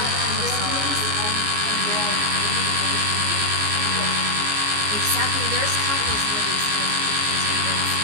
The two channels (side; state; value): left; late; 14 ms